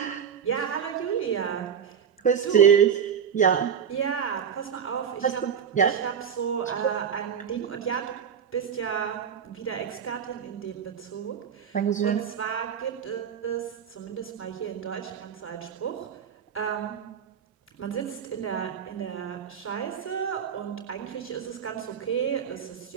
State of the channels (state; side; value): quieter; left; 7.7 dB